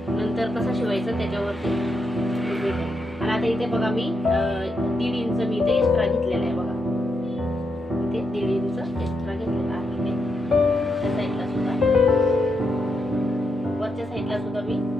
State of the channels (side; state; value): both; normal; correlation 0.82